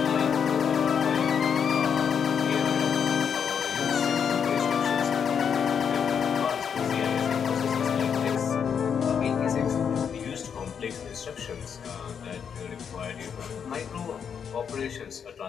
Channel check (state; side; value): quieter; right; 7.3 dB